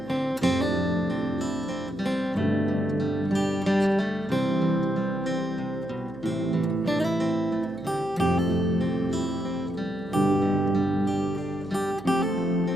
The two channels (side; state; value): right; noise; hum, 21 dB below the sound